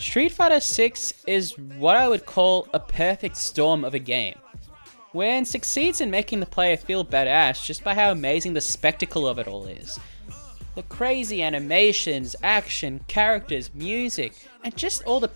Fighter 6 is what I would call a perfect storm of a game, wherein succeeds in making the player feel badass just by how amazing the spectacle of it all is. The crazy animations, action, characters, music, and just all the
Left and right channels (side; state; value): both; inverted; correlation -1.00